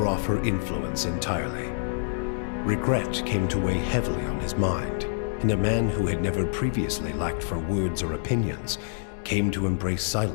off her influence entirely. Regret came to weigh heavily on his mind, and a man who had never previously lacked for words or opinions came to embrace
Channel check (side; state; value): right; silent; digital silence